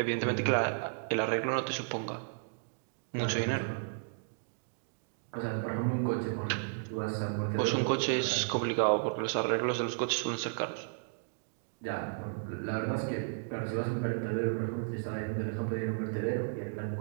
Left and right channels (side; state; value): left; silent; digital silence